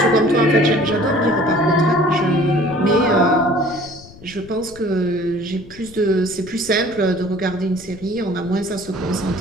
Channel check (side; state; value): left; noise; rumble, 21 dB below the sound